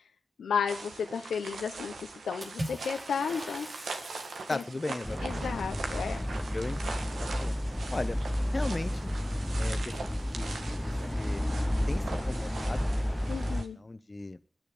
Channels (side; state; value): both; normal; correlation 0.94